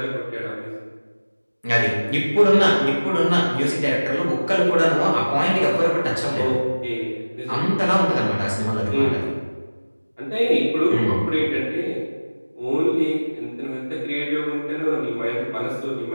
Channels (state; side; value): inverted; both; correlation -1.00